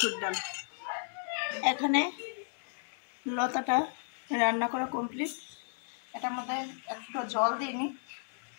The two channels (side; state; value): right; silent; 55 dB below the other